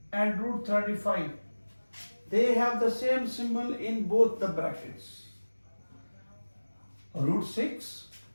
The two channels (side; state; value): both; inverted; correlation -1.00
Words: and root 35. They have the same symbol in both the brackets. Root 6